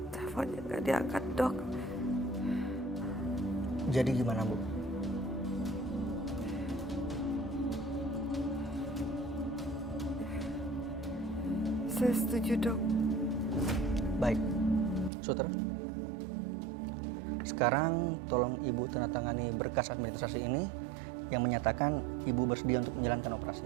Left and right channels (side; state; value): left; drops out; at 15.1 s